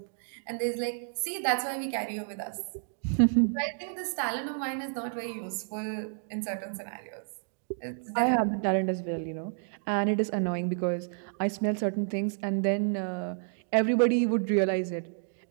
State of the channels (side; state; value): left; silent; 58 dB below the other